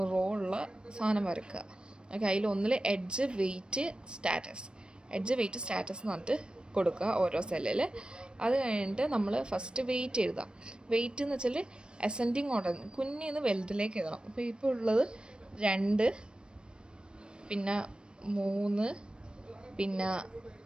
റോ ഉള്ള സാധനം വരക്കുക. ഓക്കെ, അതിൽ ഒന്നിൽ എഡ്ജ് വെയിറ്റ് സ്റ്റാറ്റസ് എന്ന് പറഞ്ഞിട്ട് കൊടുക്കുക ഓരോ സെല്ലിൽ. അത് കഴിഞ്ഞിട്ട് നമ്മൾ ഫസ്റ്റ് വെയിറ്റ് എഴുതാം. വെയിറ്റ് എന്ന് വെച്ചാൽ അസെൻഡിങ് ഓർഡർ, കുഞ്ഞിന്ന് വലുതിലേക്ക് എഴുതണം. അപ്പോൾ ഇപ്പോൾ ഉള്ളത് 2, പിന്നെ 3, പിന്നെ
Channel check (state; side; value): late; left; 0.053 ms